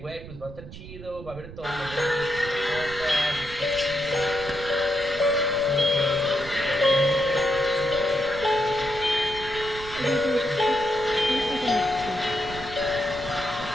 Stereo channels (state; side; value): noise; right; rumble, 14 dB below the sound